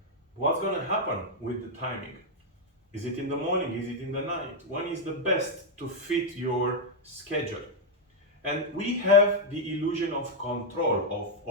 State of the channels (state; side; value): normal; both; correlation 0.00